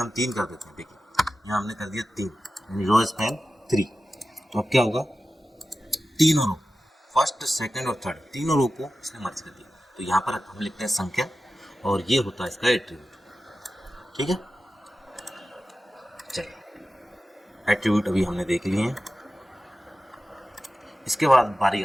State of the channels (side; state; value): both; normal; correlation 0.94